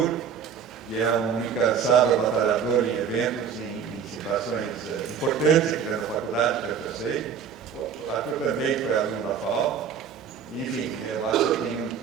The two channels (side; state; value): left; quieter; 7.3 dB